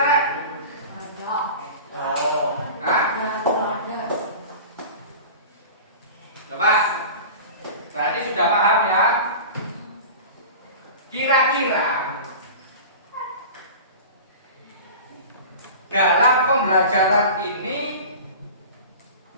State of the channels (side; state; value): both; inverted; correlation -0.36